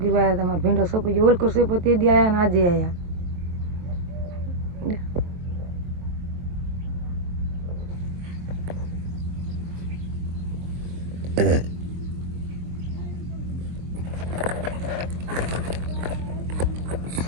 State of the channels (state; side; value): late; left; 23 ms